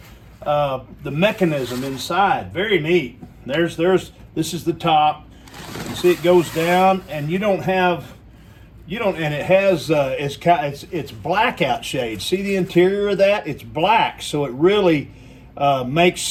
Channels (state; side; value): identical; both; correlation 1.00